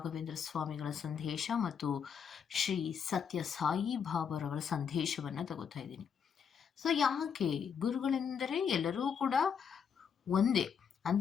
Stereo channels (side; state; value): right; quieter; 7.1 dB